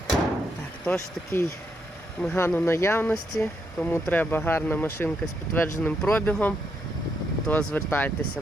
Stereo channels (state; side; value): normal; both; correlation 0.79